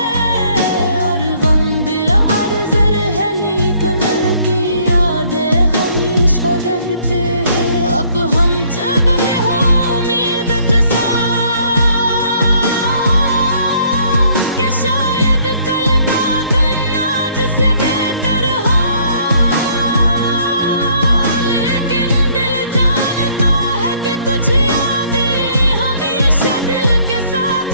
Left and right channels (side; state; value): both; inverted; correlation -0.63